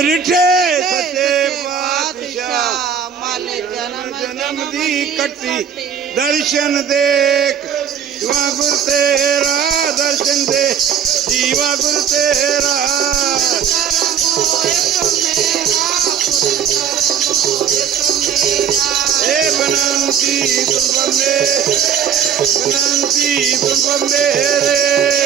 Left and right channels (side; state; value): left; quieter; 7.8 dB